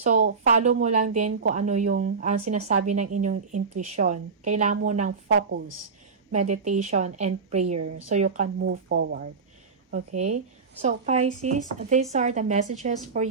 follow mo lang din kung ano yung sinasabi ng inyong intuition. Kailangan mo ng focus, meditation, and prayer so you can move forward. Okay? So, Pisces, these are the messages for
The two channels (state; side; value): quieter; left; 5.1 dB